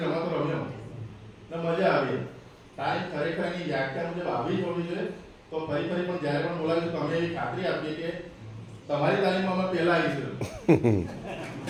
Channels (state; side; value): identical; both; correlation 1.00